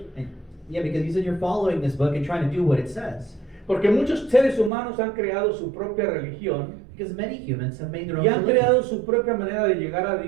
And, yeah, because you said you're following this book and trying to do what it says. porque muchos seres humanos han creado su propia religión Because many humans have made their own y han religion. creado su propia manera de llegar a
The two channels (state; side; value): drops out; left; at 4.7 s